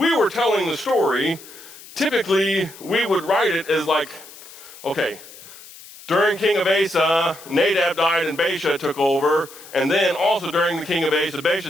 were telling the story, typically we would write it as like, okay, during King of Asa, Nadab died and Baasha took over, and then also during the King of Asa,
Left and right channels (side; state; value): left; noise; hiss, 18 dB below the sound